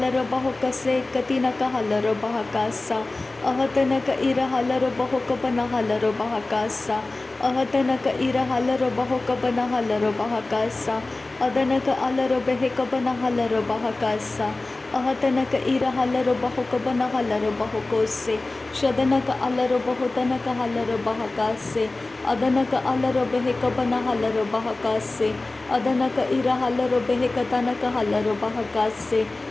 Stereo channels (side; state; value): right; quieter; 3.1 dB